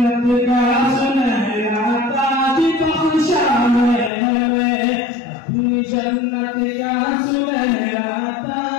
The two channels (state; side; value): drops out; right; at 4.1 s